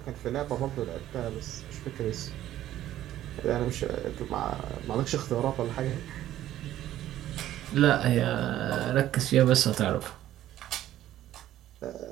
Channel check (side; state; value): left; quieter; 13.0 dB